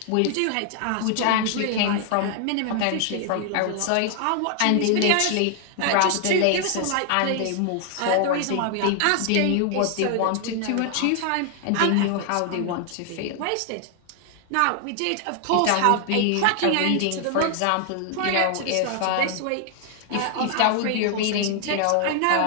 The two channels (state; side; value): different; both; correlation 0.00